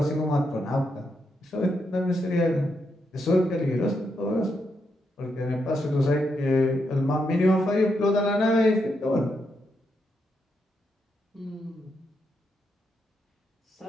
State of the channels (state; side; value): normal; both; correlation 0.81